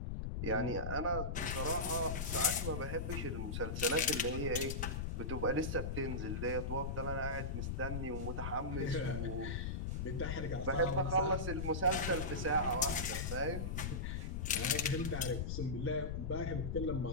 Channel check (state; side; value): noise; left; rumble, 2 dB below the sound